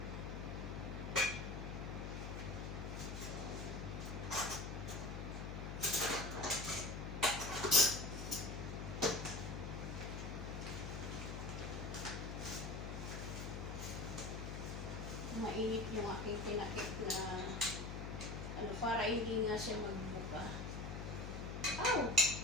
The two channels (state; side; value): noise; left; hum, 5 dB below the sound